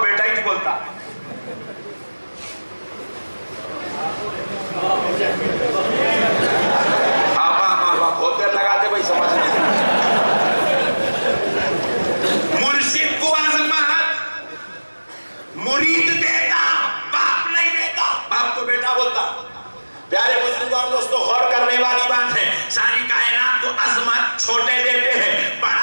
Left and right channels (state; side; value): inverted; both; correlation -1.00